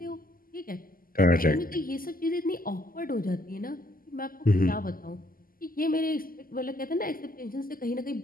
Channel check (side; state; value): right; late; 0.42 ms